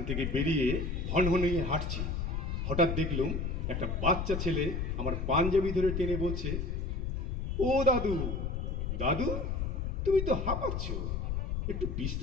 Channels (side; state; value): left; noise; rumble, 1 dB below the sound